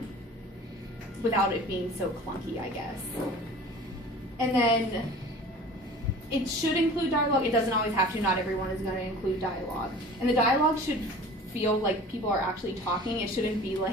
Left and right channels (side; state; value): both; normal; correlation 0.42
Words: without it being so clunky, I guess. And then it should include dialogue. It doesn't always have to. Not everyone is going to include dialogue. And the dialogue should feel like people are actually talking. It shouldn't be